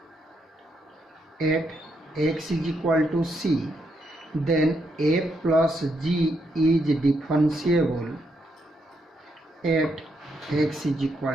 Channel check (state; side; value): normal; both; correlation 0.79